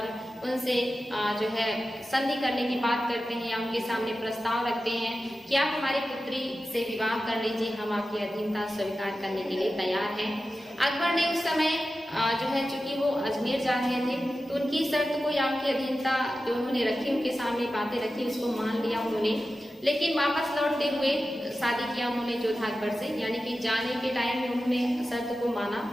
उनसे जो है संधि करने की बात करते हैं या उनके सामने प्रस्ताव रखते हैं कि आप हमारी पुत्री से विवाह कर लीजिए, हम आपकी अधीनता स्वीकार करने के लिए तैयार हैं। अकबर ने उस समय जो है चूंकि वो अजमेर जा रहे थे तो उनकी शर्त को या उनकी अधीनता जो उन्होंने रखी, उनके सामने बातें रखी, उसको मान लिया उन्होंने। लेकिन वापस लौटते हुए शादी किया उन्होंने जोधा अकबर से, यानी कि जाने के टाइम में उन्होंने शर्त को माना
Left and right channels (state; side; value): normal; both; correlation 0.93